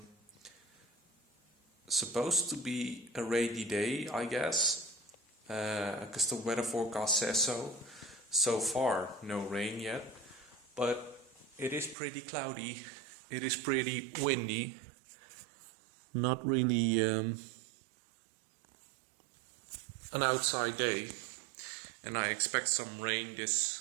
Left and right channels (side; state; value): left; drops out; at 12.0 s